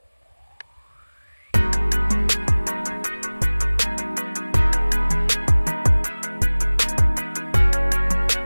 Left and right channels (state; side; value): inverted; both; correlation -1.00